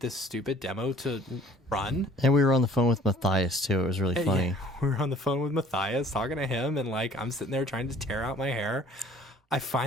this stupid demo to run, and we were on the phone with Matthias too. It was really funny. Yeah, we were on the phone with Matthias talking to him, and I'm sitting there trying to tear out my hair. I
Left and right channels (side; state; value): both; normal; correlation 0.54